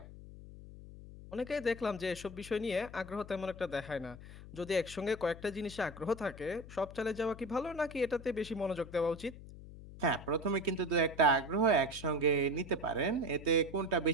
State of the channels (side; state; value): left; noise; hum, 15 dB below the sound